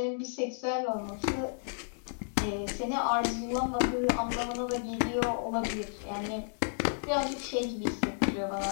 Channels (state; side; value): silent; right; digital silence